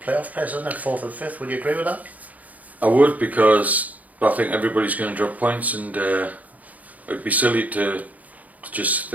playoff place, isn't it? 4th and 5th. Would you agree with that? I would, because I think everybody's going to drop points, and it'd be silly to just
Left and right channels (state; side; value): late; left; 0.076 ms